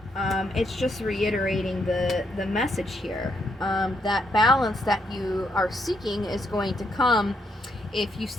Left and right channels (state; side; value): normal; both; correlation 0.77